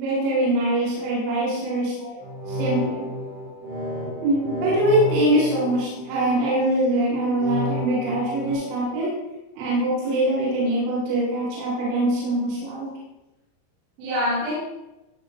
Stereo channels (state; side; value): late; left; 36 ms